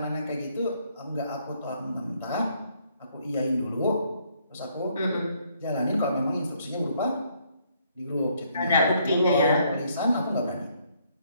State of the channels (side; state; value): both; inverted; correlation -0.69